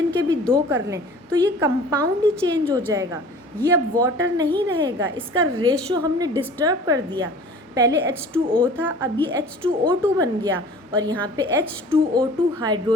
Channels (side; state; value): both; normal; correlation 0.45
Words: के भी 2 कर लें तो ये कंपाउंड ही चेंज हो जाएगा, ये अब वाटर नहीं रहेगा। इसका रेशो हमने डिस्टर्ब कर दिया। पहले H2O था, अब ये H2O2 बन गया और यहाँ पे H2O2